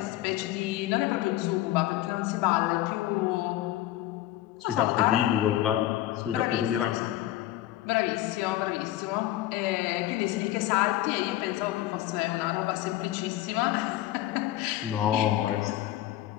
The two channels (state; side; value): quieter; right; 14.5 dB